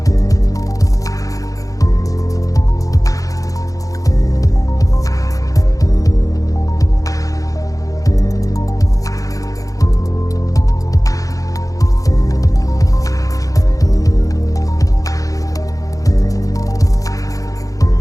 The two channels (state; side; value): late; right; 0.17 ms